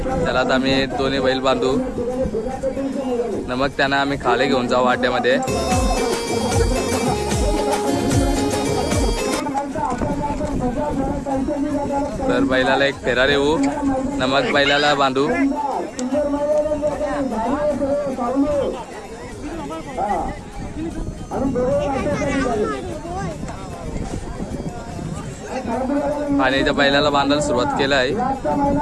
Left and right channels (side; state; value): both; identical; correlation 1.00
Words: त्याला आता आम्ही दोन्ही बैल बांधू न मग त्यांना आम्ही खाली घेऊन जाऊ अड्ड्यामध्ये। तर बैलाला एक फेरा देऊ न मग बैलाला बांधू। आणि इथं बैलाला बांधायला सुरुवात केलं आहे।